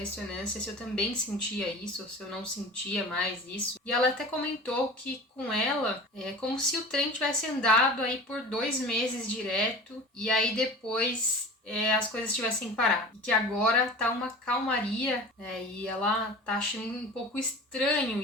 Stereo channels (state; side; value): normal; both; correlation 0.37